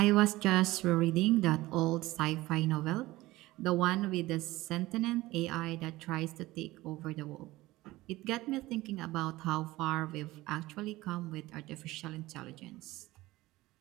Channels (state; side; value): quieter; left; 18.5 dB